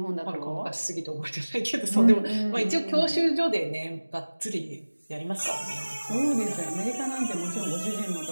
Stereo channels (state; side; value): inverted; both; correlation -1.00